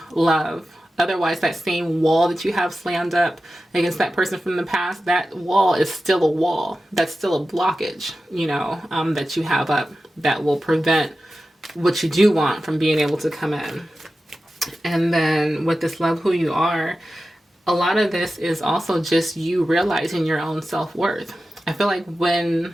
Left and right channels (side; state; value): both; normal; correlation 0.93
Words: love. Otherwise, that same wall that you have slammed up against that person from the past, that wall is still a wall. That's still a blockage, you know, that you have up that will prevent what you do want from being able to come in. And then with this love who you are, a lot of this is also just you realizing your own self-worth. I feel like